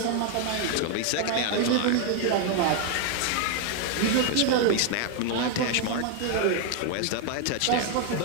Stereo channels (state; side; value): different; both; correlation 0.00